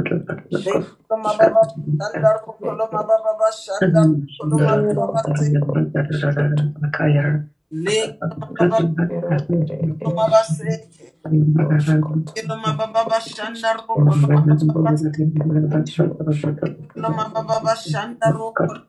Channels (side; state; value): both; identical; correlation 1.00